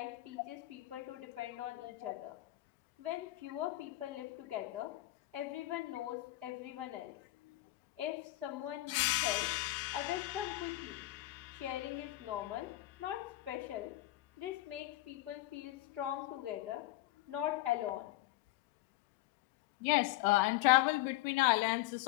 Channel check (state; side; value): quieter; right; 17.4 dB